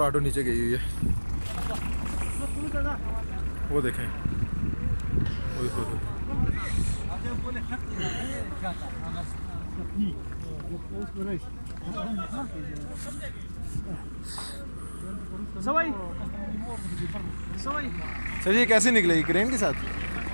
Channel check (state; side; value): inverted; both; correlation -1.00